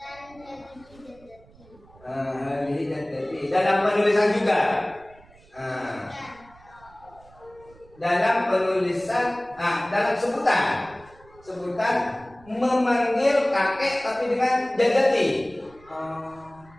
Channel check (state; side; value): noise; right; rumble, 26 dB below the sound